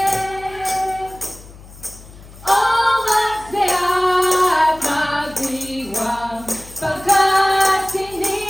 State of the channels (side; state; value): left; noise; hum, 20 dB below the sound